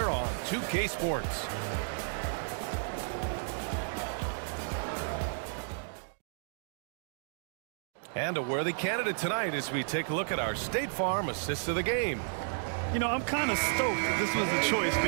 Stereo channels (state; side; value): silent; left; digital silence